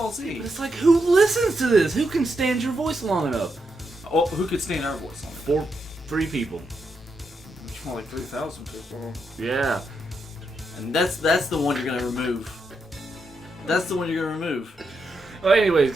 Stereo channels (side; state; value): both; normal; correlation 0.82